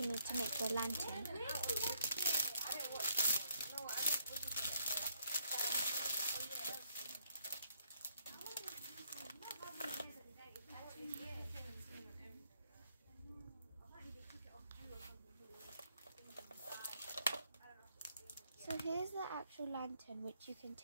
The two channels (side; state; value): both; inverted; correlation -0.71